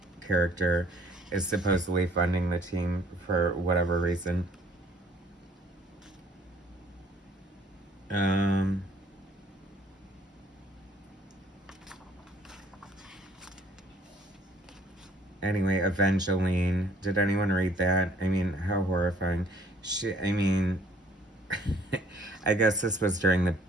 character, is supposedly funding the team for whatever reason. Anyway, Evangeline. Did anyone read that? I mean, how horrifying. I mean, I guess this was during the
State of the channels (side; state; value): both; normal; correlation 0.59